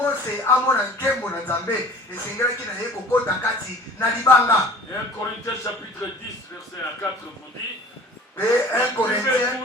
amona nkembo na nzambe esengelaki na ye kokota kati na libanga. Et 1 Corinthiens chapitre 10, verset 4 vous dit, mpe 1 Corinthiens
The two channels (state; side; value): normal; both; correlation 0.45